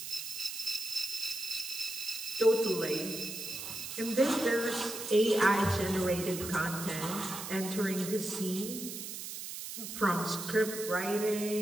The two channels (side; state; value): right; noise; hiss, 8 dB below the sound